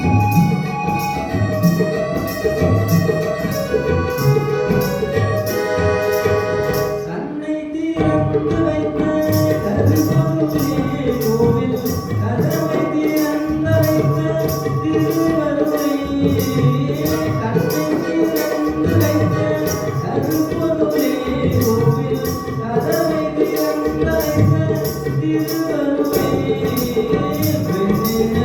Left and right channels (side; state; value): both; identical; correlation 1.00